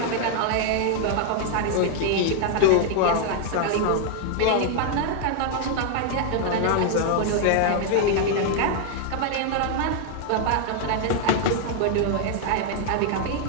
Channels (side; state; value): both; different; correlation 0.00